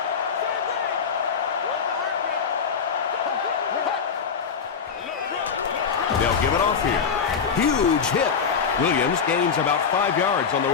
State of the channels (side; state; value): right; quieter; 6.3 dB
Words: They'll give it off here. Huge hit. Williams gains about 5 yards on the